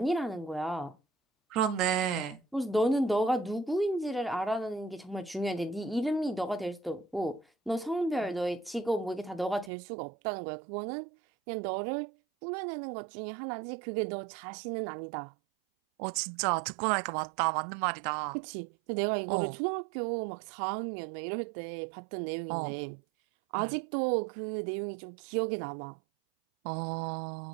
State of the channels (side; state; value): left; drops out; at 9.7 s